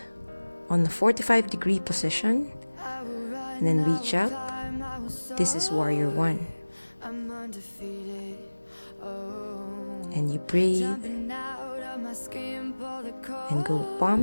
on the 45-degree position. And then reach up. This is warrior one. And you breathe. And go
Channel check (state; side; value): inverted; both; correlation -1.00